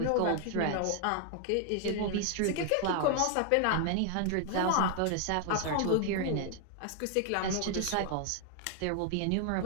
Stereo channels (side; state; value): both; different; correlation 0.00